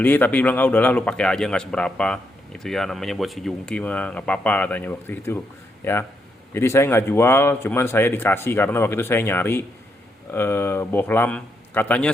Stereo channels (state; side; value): normal; both; correlation 0.79